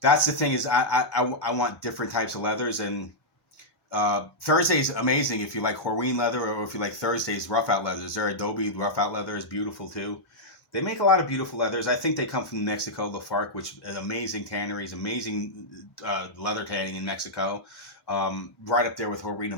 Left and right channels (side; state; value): right; late; 1.2 ms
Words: the thing, is I want different types of leathers. And Thursday's amazing if you like Horween leather, or if you like Thursday's rough out leathers. Their Adobe rough out leather is beautiful too. They make a lot of beautiful leathers. I think they come from Mexico, Lafargue, which is amazing tanneries, amazing leather tanning in Mexico. Right up there with Horween